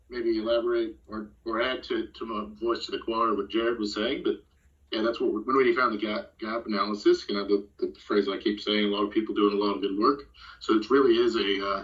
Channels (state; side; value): identical; both; correlation 1.00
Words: maybe elaborate or add to my voice to the choir what Jared was saying, but yeah, that's what when we found the gap analysis. You know, the phrase I keep saying, a lot of people doing a lot of good work. So it really is